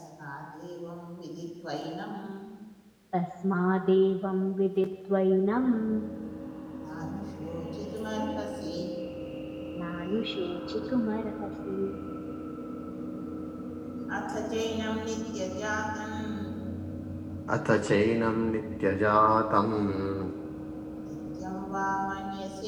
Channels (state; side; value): identical; both; correlation 1.00